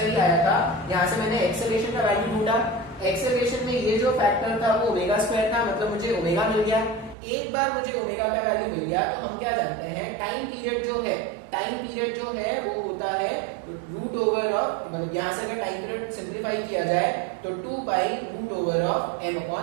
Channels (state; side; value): drops out; left; at 7.2 s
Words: ही आया था, यहाँ से मैंने एक्सेलरेशन का वैल्यू ढूंढा, एक्सेलरेशन में ये जो फैक्टर था वो ओमेगा स्क्वायर था, मतलब मुझे ओमेगा मिल गया। एक बार मुझे ओमेगा का वैल्यू मिल गया तो हम क्या जानते हैं, टाइम पीरियड जो है वो होता है रूट ओवर ऑफ, मतलब यहाँ से अगर टाइम पीरियड सिंप्लीफाई किया जाए तो 2 pi root over of m